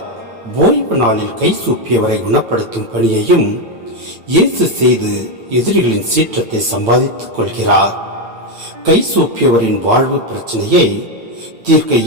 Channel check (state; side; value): late; left; 8.9 ms